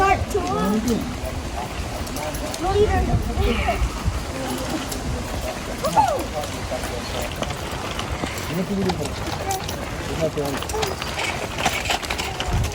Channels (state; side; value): identical; both; correlation 1.00